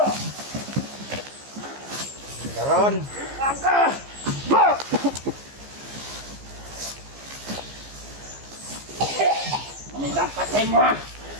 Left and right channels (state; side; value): late; left; 15 ms